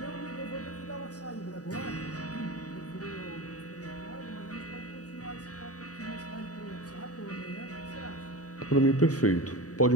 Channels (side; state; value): right; late; 0.67 ms